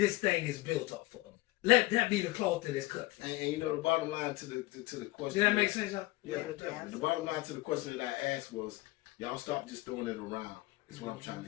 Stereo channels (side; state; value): right; quieter; 20.0 dB